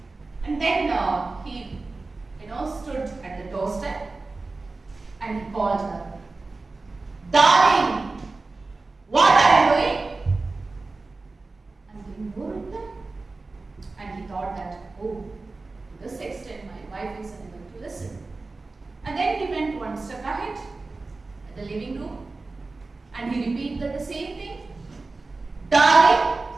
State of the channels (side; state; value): left; quieter; 3.6 dB